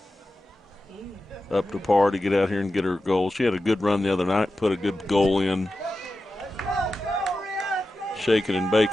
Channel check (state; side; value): normal; both; correlation 0.92